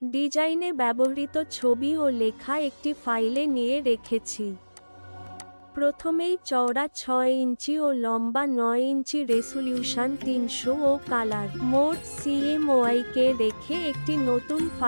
ডিজাইনে ব্যবহৃত ছবি ও লেখা একটি ফাইলে নিয়ে রেখেছি। প্রথমেই চওড়া 6 ইঞ্চি ও লম্বা 9 ইঞ্চি রেজোলিউশন 300 ও কালার মোড CMYK কে রেখে একটি নতুন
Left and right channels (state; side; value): inverted; both; correlation -1.00